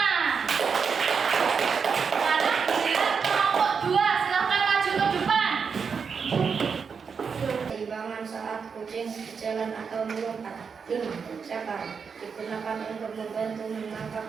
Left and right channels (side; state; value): left; quieter; 5.9 dB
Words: Sekarang giliran kelompok 2. Silakan maju ke depan. Keimbangan saat kucing berjalan atau melompat. 5. Cakar digunakan untuk membantu